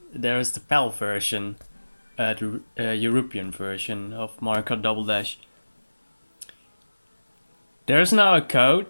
there's the PAL version, the European version of Mario Kart Double Dash. There's now a code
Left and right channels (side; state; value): both; inverted; correlation -1.00